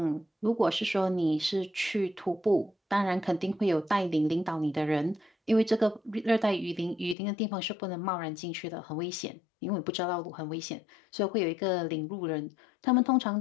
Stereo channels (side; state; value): right; drops out; at 7.2 s